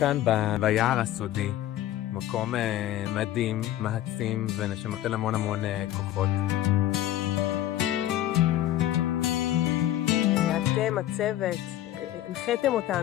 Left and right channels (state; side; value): quieter; right; 13.2 dB